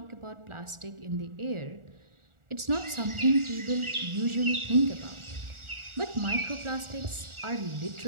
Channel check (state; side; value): late; left; 1.4 ms